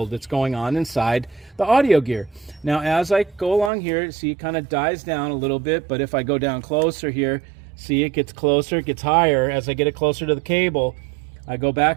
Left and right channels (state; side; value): drops out; left; at 3.7 s